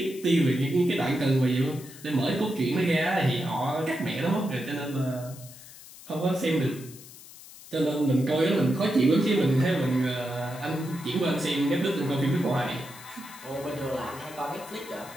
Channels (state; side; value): noise; left; hiss, 18 dB below the sound